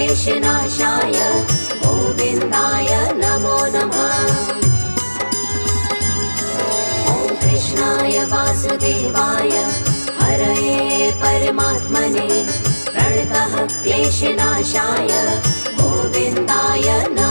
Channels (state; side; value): inverted; both; correlation -1.00